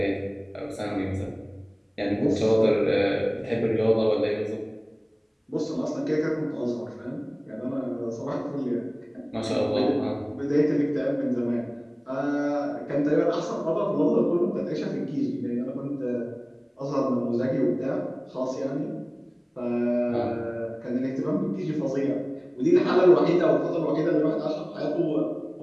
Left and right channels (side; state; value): both; identical; correlation 1.00